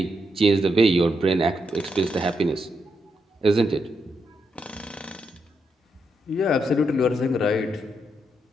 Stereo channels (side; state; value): both; normal; correlation 0.81